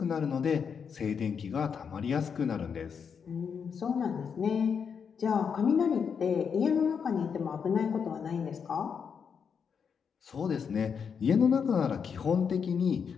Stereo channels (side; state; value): right; quieter; 6.6 dB